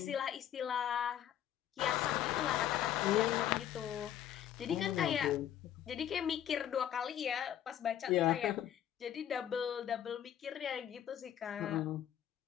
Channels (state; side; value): quieter; right; 10.7 dB